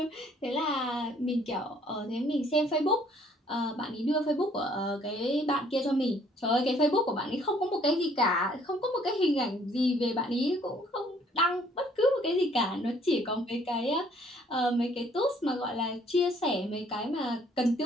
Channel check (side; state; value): both; normal; correlation 0.61